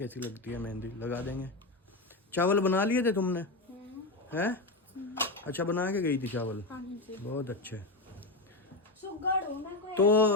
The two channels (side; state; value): right; quieter; 3.0 dB